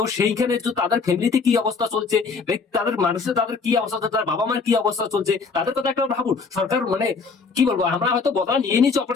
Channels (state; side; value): quieter; right; 4.8 dB